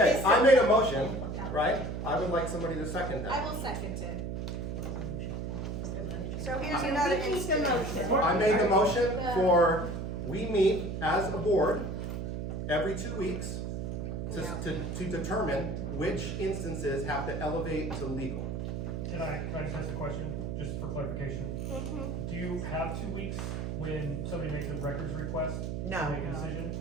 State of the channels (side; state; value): right; noise; hum, 4 dB below the sound